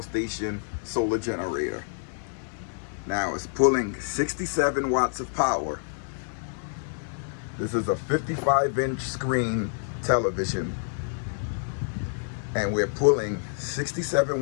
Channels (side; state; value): right; silent; 57 dB below the other